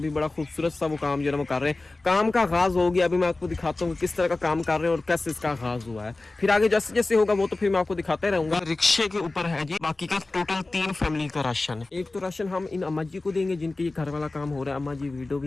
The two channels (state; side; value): quieter; right; 3.2 dB